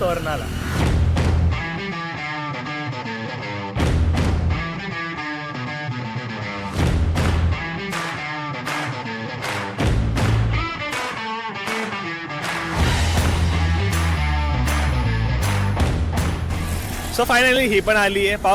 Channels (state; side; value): identical; both; correlation 1.00